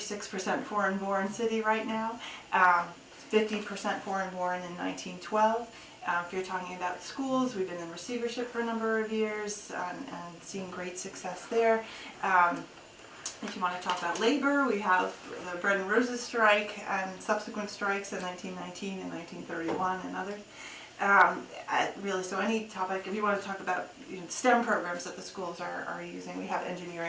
foreign-born city right now, 50% foreign-born in 1912. If you're talking about schools, we've been in receivership for a number of years and seen great success there. If you want to talk about labor, we have the Bread and Roses strike and subsequent strikes in 1919 and 1931 and others. Really, so any topic, if you want to talk about STEM programs that the schools are using, we have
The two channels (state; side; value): identical; both; correlation 1.00